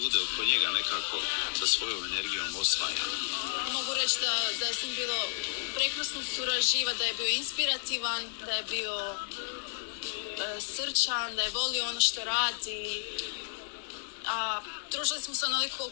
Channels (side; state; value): right; silent; digital silence